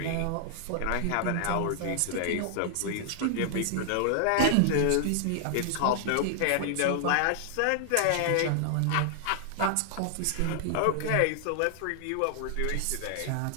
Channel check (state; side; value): different; both; correlation 0.00